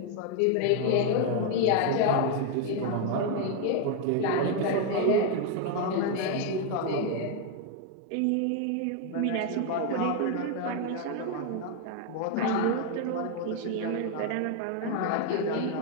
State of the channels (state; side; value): different; both; correlation 0.00